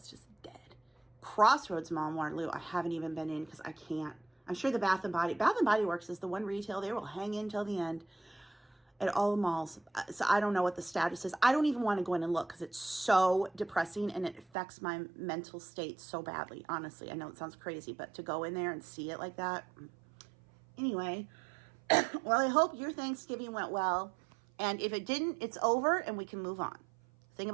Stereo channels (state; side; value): drops out; left; at 14.5 s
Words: just dead. Crossroads Mall in Waterloo, I haven't even been in because I can't. I'm sure the Bath & Body Works is the one retail they will hang in till the end at all the malls. So I don't know what the status is. I don't even want to go in and look because it's so depressing and it affects my mental state so badly. Honestly, I know it sounds crazy, but to go in there and see it like that. Anyway, well, I hope your Thanksgiving went well. And if it didn't, it's over and we can move on. The thing